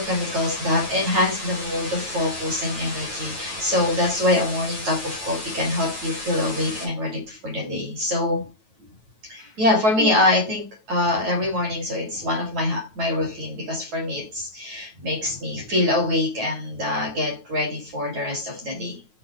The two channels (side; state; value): left; late; 9.2 ms